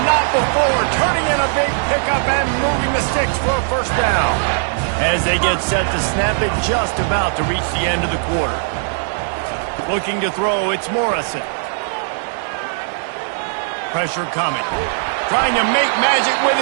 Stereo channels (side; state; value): left; silent; digital silence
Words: not before. Turning in a big pickup and moving the sticks for a first down. As they get set to snap it, just about to reach the end of the quarter. Looking to throw, it's Morrison. Pressure coming. Trying to make magic with